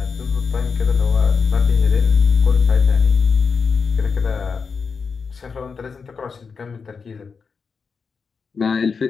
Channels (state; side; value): quieter; right; 5.4 dB